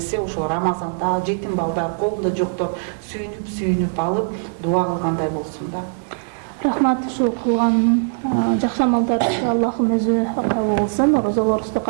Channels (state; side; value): silent; left; digital silence